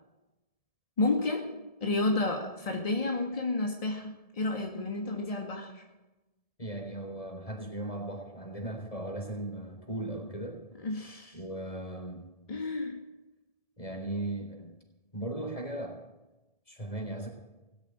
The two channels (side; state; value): right; late; 1.7 ms